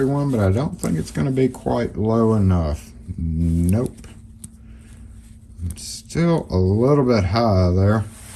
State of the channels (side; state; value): both; identical; correlation 1.00